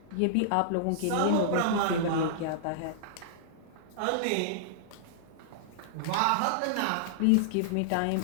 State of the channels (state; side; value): different; both; correlation -0.01